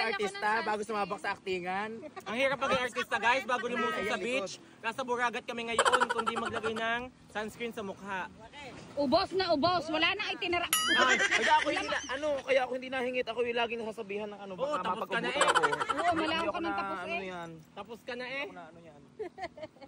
artista bago sumabak sa aktingan. Ang hirap maging artista, guys, bago lumusong sa beach. Nasa Buragat kami ngayon, kundi maglagay ng sunscreen sa mukha. Ubos na ubos, wala na itinara. Kaya ako hindi nahingit. Ako yung laging nasasabihan ng ano. Oo, Baka tapos ka na mapagpabutan ako. Oo, malaw ko ng tapos Ano eh. yan? Tapos ka na eh. Ano yan?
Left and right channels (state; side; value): identical; both; correlation 1.00